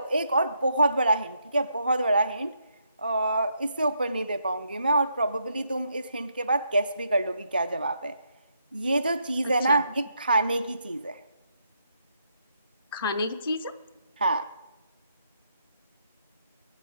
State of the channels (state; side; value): inverted; both; correlation -0.77